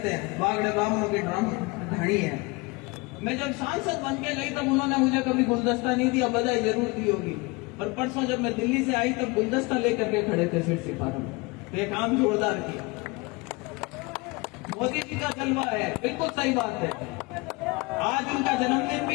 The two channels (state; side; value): quieter; right; 26.1 dB